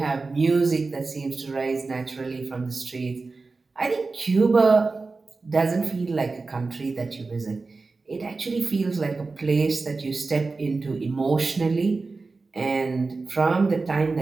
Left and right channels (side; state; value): left; quieter; 3.9 dB